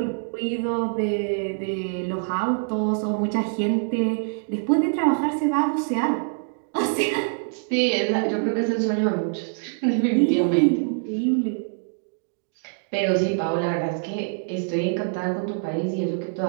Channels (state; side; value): silent; left; digital silence